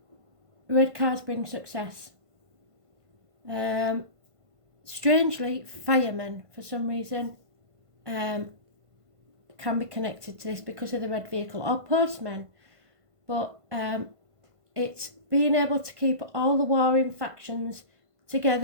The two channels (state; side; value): late; left; 1.5 ms